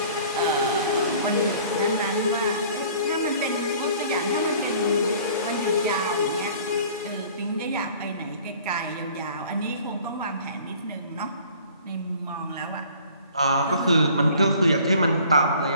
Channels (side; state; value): both; inverted; correlation -0.51